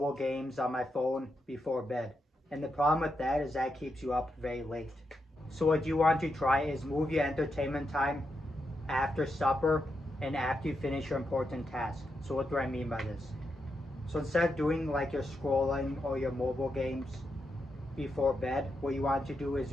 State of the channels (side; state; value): both; normal; correlation 0.84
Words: games on my phone before bed. And the problem with that is that keeps you up very late. So what you want to try is move your entertainment time after supper and after you finish your important task. So what do I mean by this? So instead of doing like your scrolling or your mobile games before bed, what you want to do is